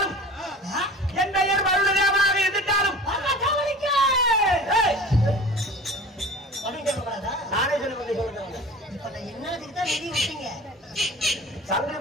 என் பெயர் வருடமாக எதிர்த்தாலும் நானே சொல்லுவேன். சொல்லி சொல்லுங்க. இப்ப நான் என்னதுக்கு தான் வெளியே விட்டீங்க? சங்கிலி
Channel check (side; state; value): both; normal; correlation 0.39